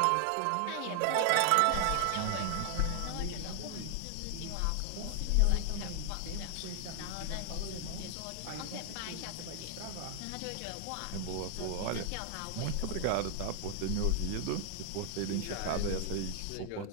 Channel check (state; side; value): different; both; correlation 0.00